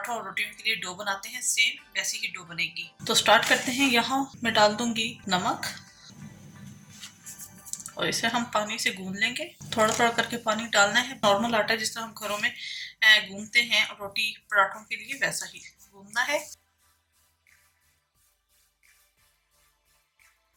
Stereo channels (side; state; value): both; identical; correlation 1.00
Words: और रोटियों के लिए डो बनाते हैं, सेम वैसी ही डो बनेगी। तो स्टार्ट करते हैं। यहाँ मैं डाल दूंगी नमक और इसे हम पानी से गूंद लेंगे। थोड़ा थोड़ा करके पानी डालना है। नॉर्मल आटा जिस तरह हम घरों में गूंदते हैं रोटी पराठों के लिए, वैसा ही गूंदना है।